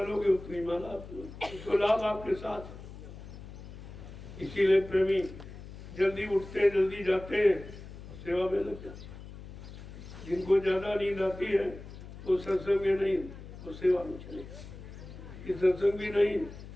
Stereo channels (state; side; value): noise; left; hum, 14 dB below the sound